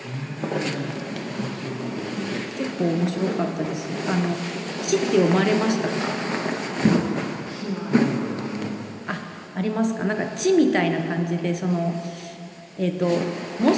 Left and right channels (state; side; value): identical; both; correlation 1.00